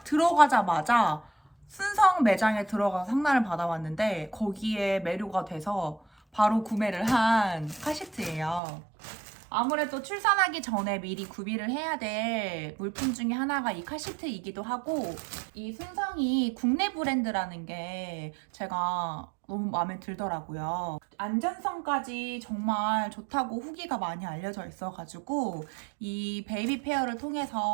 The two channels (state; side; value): drops out; left; at 8.6 s